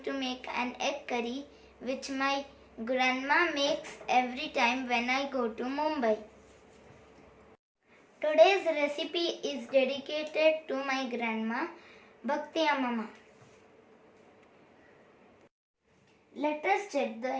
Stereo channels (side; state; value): both; identical; correlation 1.00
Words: to make an egg curry which my grandma makes every time when I go to Mumbai. Today's recipe is dedicated to my grandma, Bhakti Mama. Let us check the